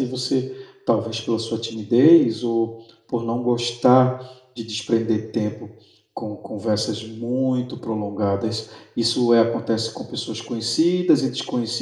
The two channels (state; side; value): identical; both; correlation 1.00